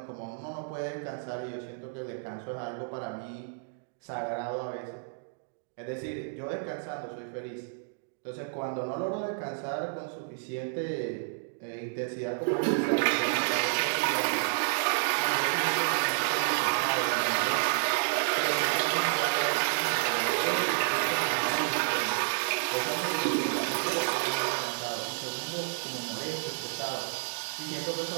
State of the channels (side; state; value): left; silent; digital silence